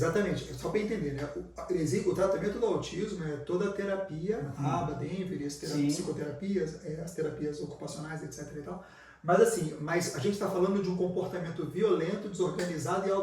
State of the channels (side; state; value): both; identical; correlation 1.00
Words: só para entender, né? O tratamento do autismo é toda a terapia, ABA, Denver, as psicoterapias, as terapias ocupacionais, etc. e tal. Mas a gente está falando de um comportamento violento, desorganizado e